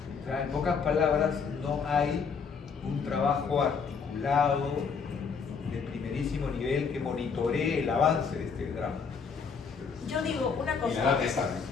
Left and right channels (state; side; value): quieter; right; 5.8 dB